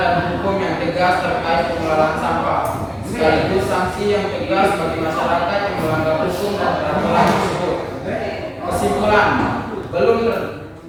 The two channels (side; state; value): both; identical; correlation 1.00